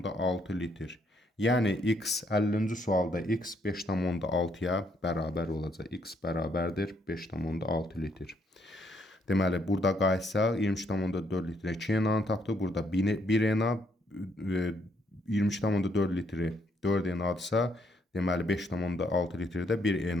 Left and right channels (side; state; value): both; normal; correlation 0.72